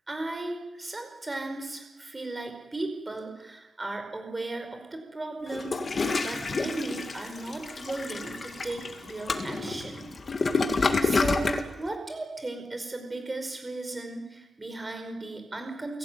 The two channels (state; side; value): normal; both; correlation 0.90